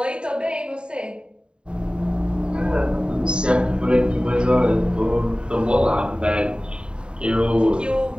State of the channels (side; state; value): left; late; 0.051 ms